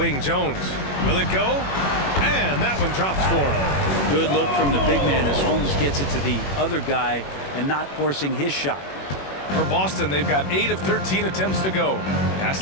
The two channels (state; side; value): late; right; 21 ms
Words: Jones. Will it go? And that one drops for him. Good look from the big man as Holmes gets it to the other guy and not forcing his shot. For Boston, they've got 8 of 13 attempts to go. Pass